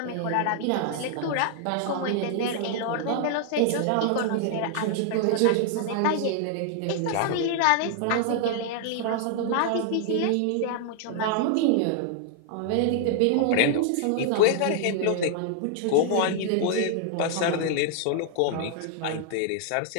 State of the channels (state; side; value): different; both; correlation 0.00